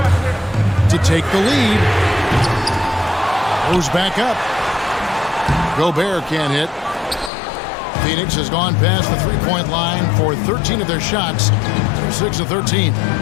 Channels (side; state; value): right; drops out; at 7.3 s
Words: To take the lead. Moves back up. Gobert can't hit. Phoenix has gone past the three-point line for 13 of their shots. They're 6 of 13.